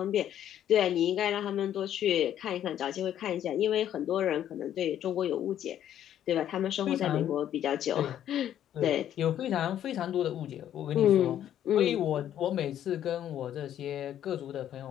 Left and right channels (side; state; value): right; quieter; 10.9 dB